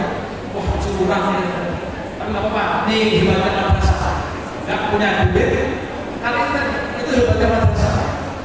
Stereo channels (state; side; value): identical; both; correlation 1.00